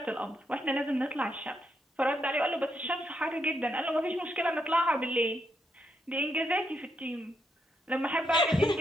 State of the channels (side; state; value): both; normal; correlation 0.79